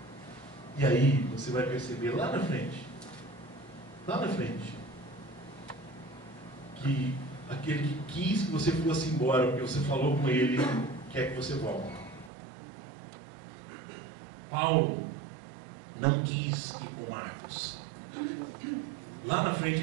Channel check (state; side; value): drops out; left; at 12.3 s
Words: E aí você vai perceber lá na frente, que aquele que quis que você fosse embora, porque você falou com ele, quer que você volte. Paulo não quis ir com Marcos. Lá na frente